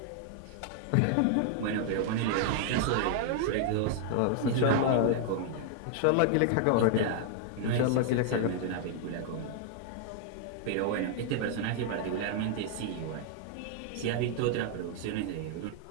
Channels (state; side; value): different; both; correlation 0.00